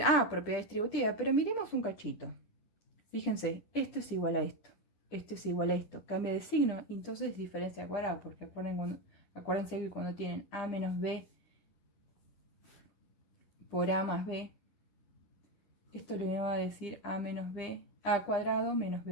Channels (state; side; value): late; right; 9.9 ms